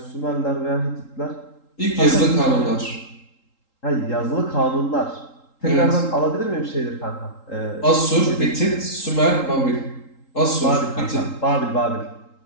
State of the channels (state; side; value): late; right; 3.8 ms